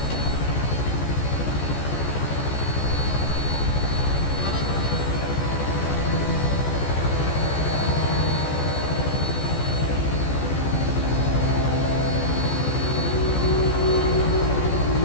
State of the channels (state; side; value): late; right; 14 ms